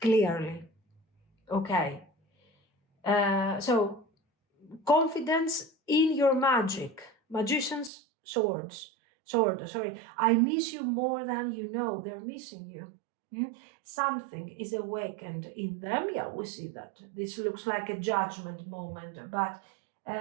Clearly. Okay. So, confidence in your magic. Magician's sword, sorry. I miss you more than you know. They're missing you. Something is awakened in them. Yeah, we see that. This looks like a judgment moment, but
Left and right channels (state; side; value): drops out; left; at 7.9 s